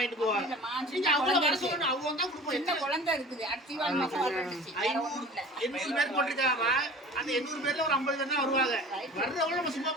போவாங்க. நீங்க அவங்க வர சொல்லணும், அவங்க தான் கொடுப்போம். என்ன குழந்தை இருக்குது? 800 பேர் போட்டிருக்காங்கம்மா. அந்த 800 பேர்ல ஒரு 50 பேர் தான் வருவாங்க. வர்றவங்க நம்ம சும்மா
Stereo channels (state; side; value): normal; both; correlation 0.41